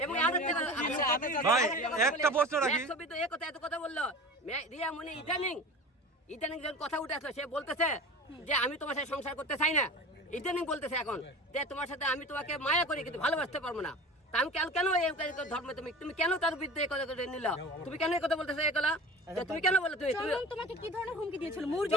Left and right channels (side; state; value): both; normal; correlation 0.35